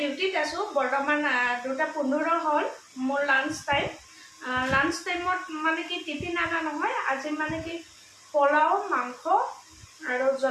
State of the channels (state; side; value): identical; both; correlation 1.00